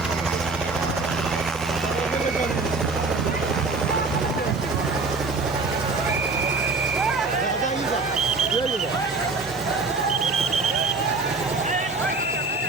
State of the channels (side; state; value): left; quieter; 3.8 dB